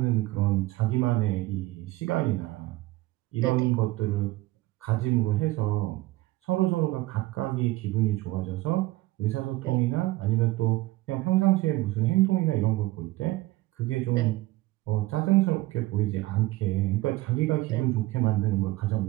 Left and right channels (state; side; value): quieter; left; 18.5 dB